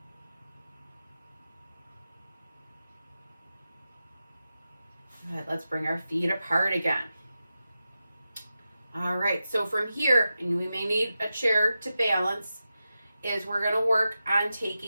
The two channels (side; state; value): both; inverted; correlation -0.92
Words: Good, let's bring our feet apart again. All right, so from here, and we may need a chair to balance, is we're gonna work on